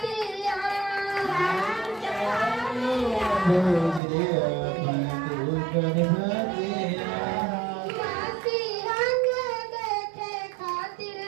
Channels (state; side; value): drops out; left; at 4.0 s